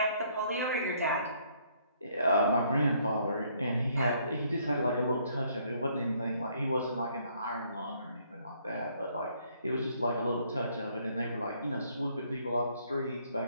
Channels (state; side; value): inverted; both; correlation -0.66